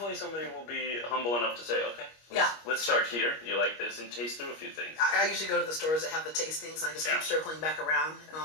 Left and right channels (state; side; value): late; right; 25 ms